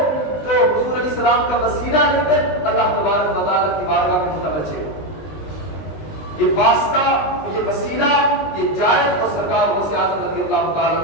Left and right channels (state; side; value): late; right; 19 ms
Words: تو حضور علیہ السلام کا وسیلہ لے کر اللہ تبارک و تعالیٰ کی بارگاہ میں متوجہ ہو۔ یہ واسطہ، یہ وسیلہ، یہ جائز اور سرکار غوث اعظم رضی اللہ تعالیٰ